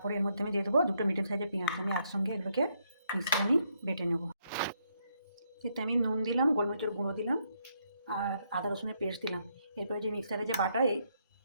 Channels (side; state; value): both; inverted; correlation -0.75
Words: এর মধ্যে আমি দিয়ে দেবো 2টো মিডিয়াম সাইজের পেঁয়াজ, আমি একসঙ্গে এগুলোকে মিক্সিতে আমি বেটে নেব। এতে আমি নুন দিলাম, গোলমরিচের গুঁড়ো দিলাম, আর আদা রসুনের পেস্ট দিলাম। এরপরে যে মিক্সারে যে বাটা, এই